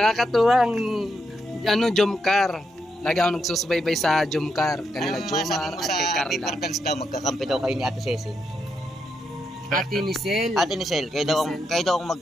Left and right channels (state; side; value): normal; both; correlation 0.82